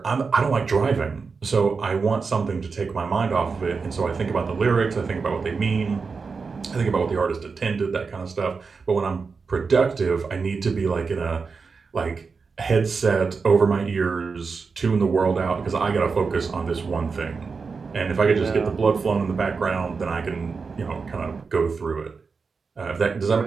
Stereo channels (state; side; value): quieter; left; 4.9 dB